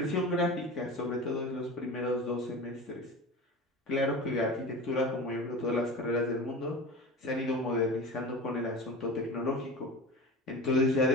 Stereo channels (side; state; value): both; normal; correlation 0.32